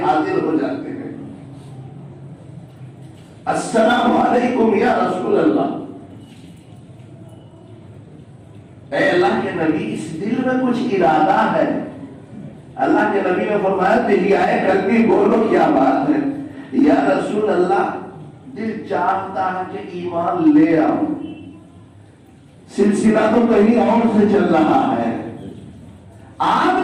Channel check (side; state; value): both; identical; correlation 1.00